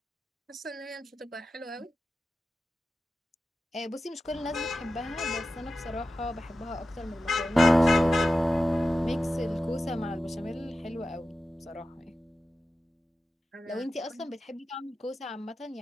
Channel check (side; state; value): both; normal; correlation 0.93